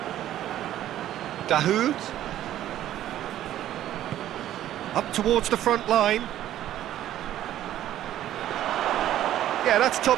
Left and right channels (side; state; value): left; quieter; 12.5 dB